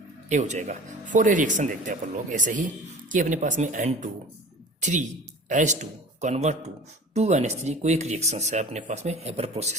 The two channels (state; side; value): normal; both; correlation 0.41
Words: ए हो जाएगा। फॉर ए रिएक्शन देखते हैं अपन लोग ऐसे ही कि अपने पास में N2 3H2 convert to 2NH3 कोई एक रिएक्शन है अपने पास में हेबर